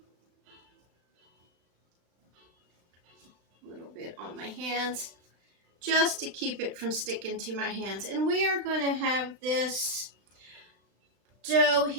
A little bit on my hands just to keep it from sticking to my hands. And we are going to have this dough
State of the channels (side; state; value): left; late; 36 ms